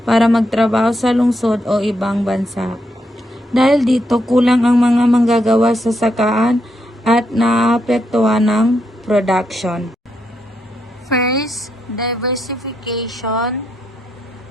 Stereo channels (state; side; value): normal; both; correlation 0.80